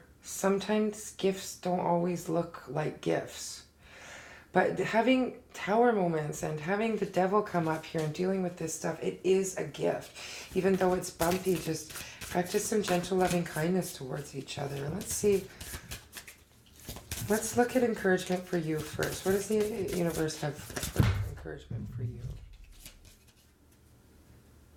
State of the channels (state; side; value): identical; both; correlation 1.00